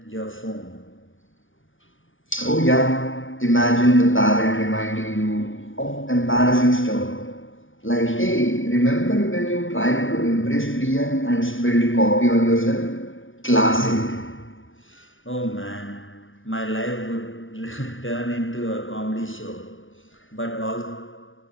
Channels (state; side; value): late; right; 0.57 ms